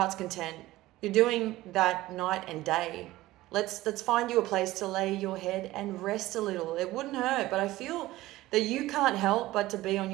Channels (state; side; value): quieter; left; 17.2 dB